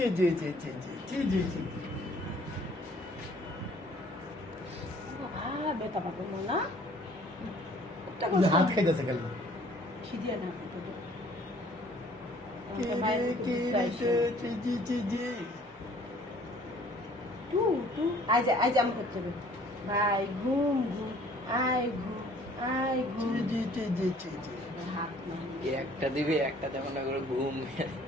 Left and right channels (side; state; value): both; normal; correlation 0.56